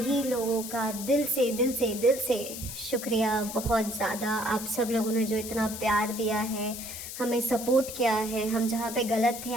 लोगों का दिल से शुक्रिया, बहुत ज़्यादा। आप सब लोगों ने जो इतना प्यार दिया है, हमें सपोर्ट किया है, हम जहाँ पे गलत थे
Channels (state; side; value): noise; left; hiss, 9 dB below the sound